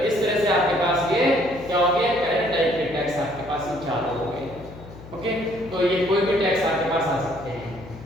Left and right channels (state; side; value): noise; left; hum, 17 dB below the sound